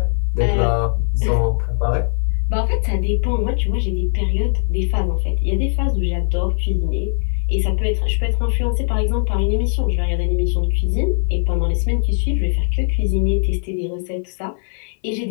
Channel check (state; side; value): silent; right; 59 dB below the other